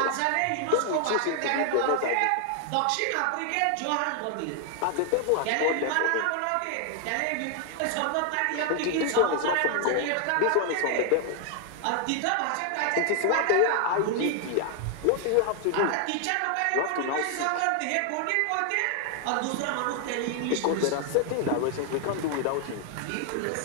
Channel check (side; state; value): both; different; correlation 0.00